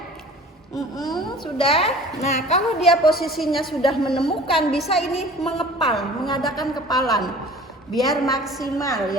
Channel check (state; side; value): normal; both; correlation 0.44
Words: Sudah. Nah, kalau dia posisinya sudah menemukan, bisa ini mengepal, mengadakan kepalan biar maksimal